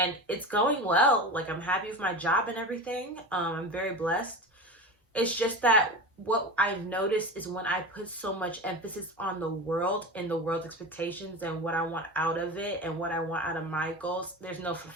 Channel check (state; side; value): normal; both; correlation 0.28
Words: it's going well. Like, I'm happy with my job and everything. I'm very blessed. It's just that what I've noticed is when I put so much emphasis on the world and the world's expectations and what I want out of it and what I want out of my goals, there's no